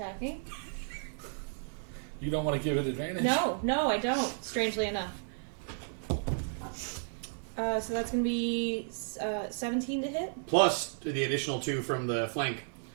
You don't want to give it advantage? No, I don't. Strangely enough. So that's going to be 17 to hit. Plus the additional 2 from the flank,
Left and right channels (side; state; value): left; silent; 56 dB below the other